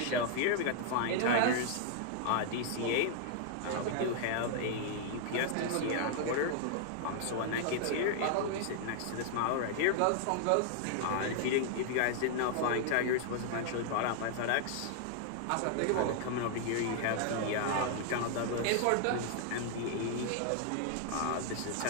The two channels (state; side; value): different; both; correlation 0.00